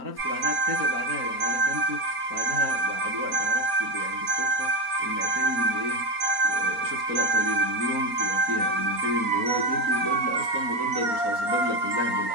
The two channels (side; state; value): left; late; 4.3 ms